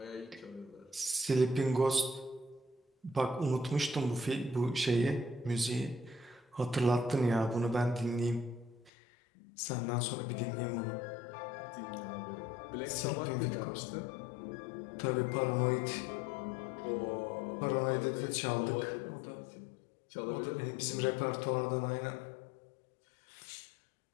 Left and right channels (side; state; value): right; drops out; at 8.9 s